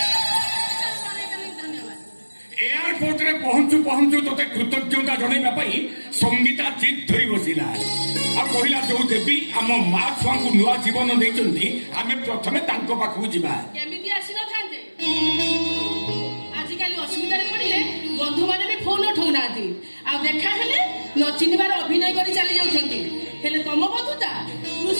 एयरपोर्ट रे पहुंचु पहुंचु तोते कृतज्ञता जणाइबा पई संगीता जिद धरी बसिला आ कहिला जो देवी आम मां छुआ को नुआ जीवन देइचंती आमे प्रथमे तांको पाखु जिबा केमिति आसी न थांते आजिकाली असुविधा रे पड़िले बंधु माने भी फोन उठाउनाती आ देखा हेले न चिनिबार अभिनय करी चली जाउछंती हेले तम बंधुता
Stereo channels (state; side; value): inverted; both; correlation -1.00